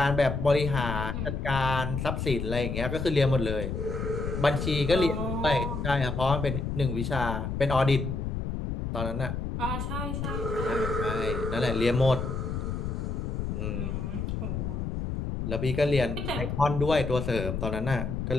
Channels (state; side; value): noise; left; rumble, 3 dB below the sound